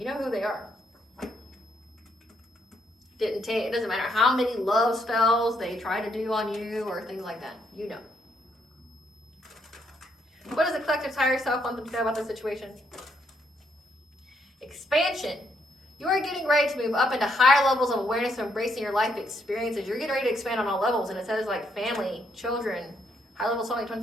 know who they are. It doesn't matter how many love spells they try to do on you or things like that. You know. What does the collective higher self want them to know about the situation? Expansion. You are getting ready to move up into higher levels of awareness and embracing your life experiences. You're getting ready to expand on all levels, and it says like family, children, high level soulmate, twin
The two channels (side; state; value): both; normal; correlation 0.74